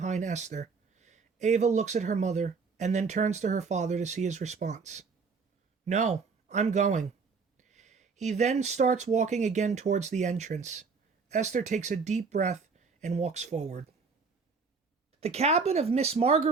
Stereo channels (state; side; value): quieter; left; 4.9 dB